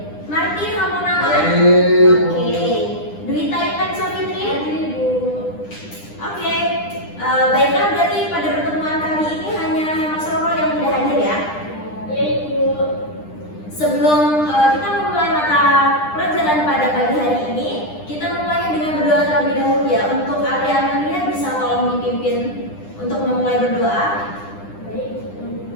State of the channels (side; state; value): right; late; 9.9 ms